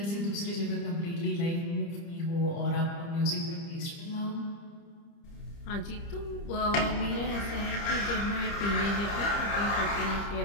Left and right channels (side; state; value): right; late; 30 ms